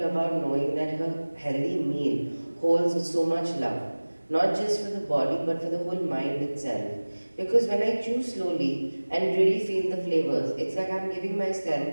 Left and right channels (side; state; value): both; inverted; correlation -1.00